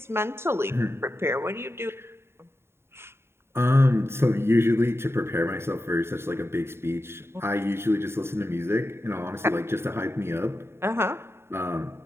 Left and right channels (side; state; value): left; late; 0.12 ms